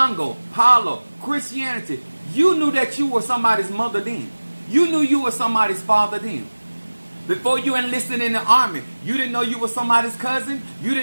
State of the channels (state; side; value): inverted; both; correlation -1.00